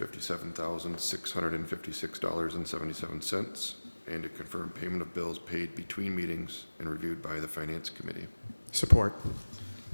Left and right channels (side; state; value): both; inverted; correlation -1.00